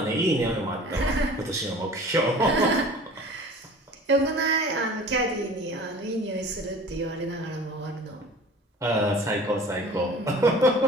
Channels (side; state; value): both; normal; correlation 0.43